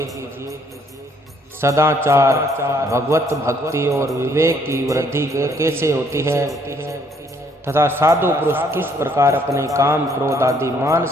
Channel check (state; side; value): normal; both; correlation 0.66